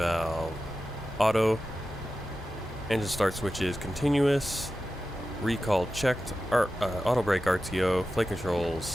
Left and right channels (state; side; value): normal; both; correlation 0.93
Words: auto, engine start switches continuous, recall checked, auto brake RTO, flight